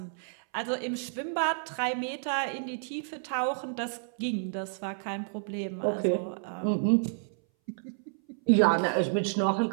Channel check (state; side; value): silent; left; 58 dB below the other